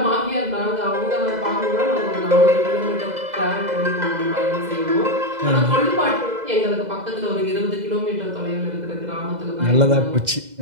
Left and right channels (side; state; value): left; late; 2.0 ms